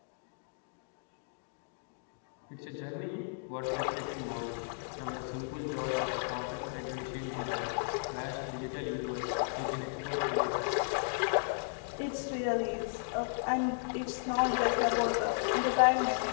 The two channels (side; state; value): right; silent; digital silence